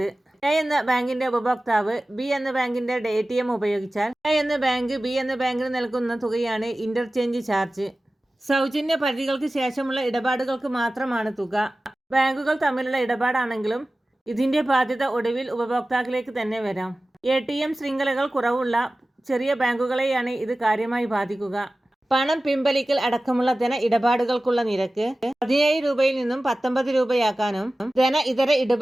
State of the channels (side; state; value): both; normal; correlation 0.96